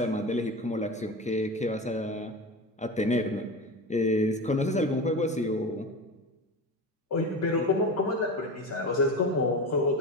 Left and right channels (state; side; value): normal; both; correlation 0.26